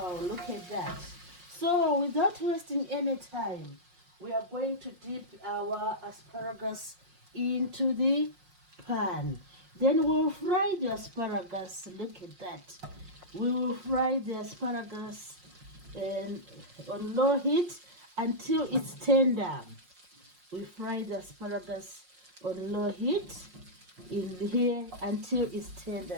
look at that. So without wasting any time, we are going to dip our asparagus into the pan. Then we'll fry the asparagus. Look at that. We will fry the asparagus on low heat until it's tender. We fry the asparagus on low heat in here until it's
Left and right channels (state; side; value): late; left; 5.5 ms